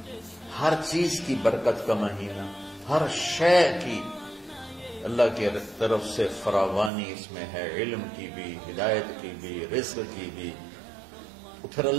ہر چیز کی برکت کا مہینہ، ہر شے کی اللہ کی طرف سے فراوانی اس میں ہے، علم کی بھی، ہدایت کی بھی، رزق کی بھی۔ پھر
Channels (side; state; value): left; drops out; at 6.9 s